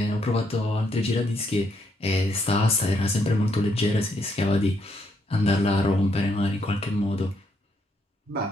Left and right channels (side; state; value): both; normal; correlation 0.74